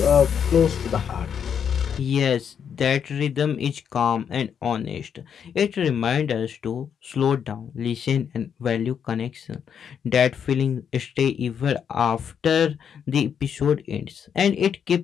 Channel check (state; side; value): quieter; right; 7.8 dB